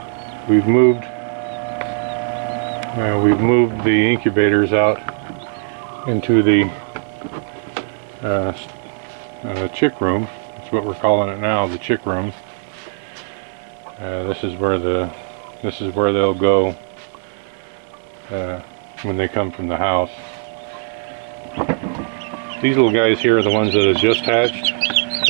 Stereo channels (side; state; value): left; silent; 66 dB below the other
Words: We've moved the incubators out into the chick room. That's what we're calling it now, the chick room. This is where they'll go when they come from the house. These little guys here are the ones that have just hatched,